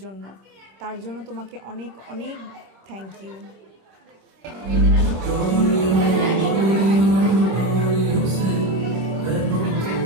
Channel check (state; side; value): late; left; 26 ms